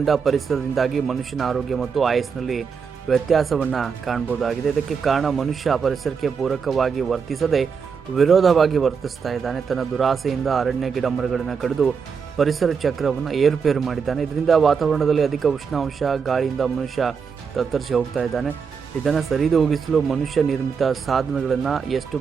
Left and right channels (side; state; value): left; quieter; 6.0 dB